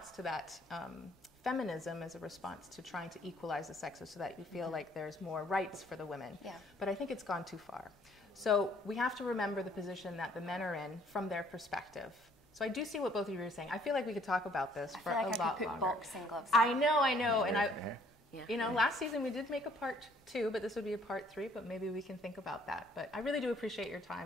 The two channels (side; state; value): both; normal; correlation 0.61